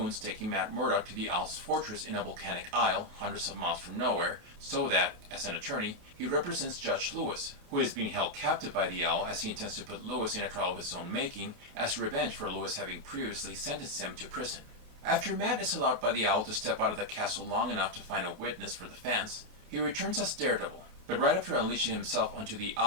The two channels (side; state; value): left; late; 28 ms